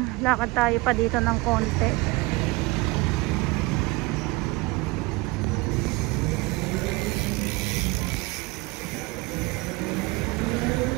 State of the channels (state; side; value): quieter; left; 23.1 dB